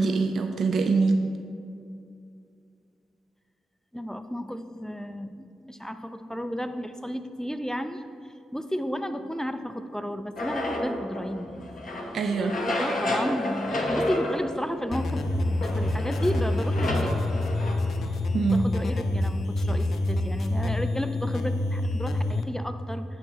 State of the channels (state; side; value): normal; both; correlation 0.88